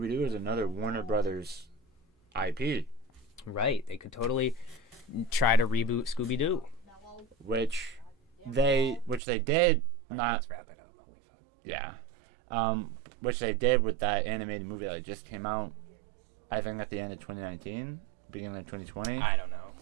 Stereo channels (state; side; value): drops out; left; at 9.2 s